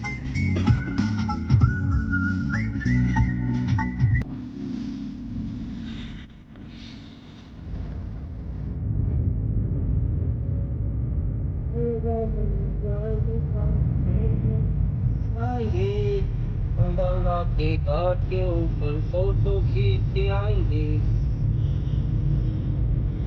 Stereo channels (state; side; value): identical; both; correlation 1.00